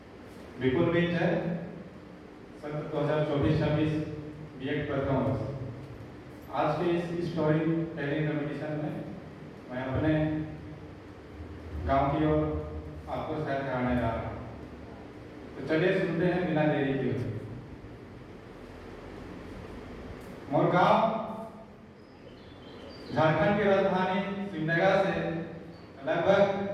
विपुल मिंज है। सत्र 2024-26 बीएड प्रथम वर्ष। आज के इस स्टोरी टेलिंग कॉम्पिटिशन में मैं अपने गांव की ओर आपको सैर कराने जा रहा हूँ। तो चलिए सुनते हैं बिना देरी के। मोर गांव झारखंड की राजधानी सिमडेगा से लगभग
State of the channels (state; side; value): identical; both; correlation 1.00